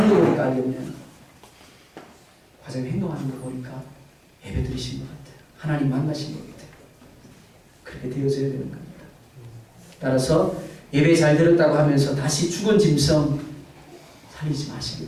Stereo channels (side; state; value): both; identical; correlation 1.00